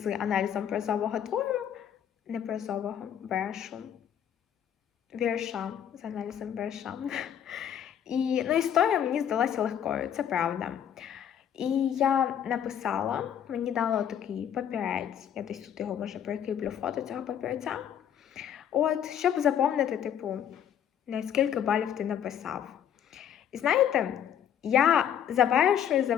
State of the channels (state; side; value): quieter; right; 9.4 dB